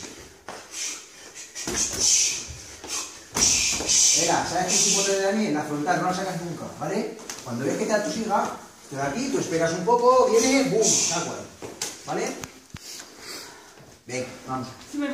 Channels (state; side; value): identical; both; correlation 1.00